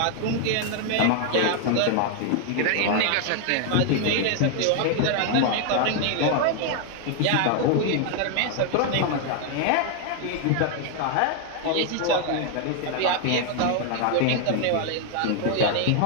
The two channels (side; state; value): both; different; correlation 0.00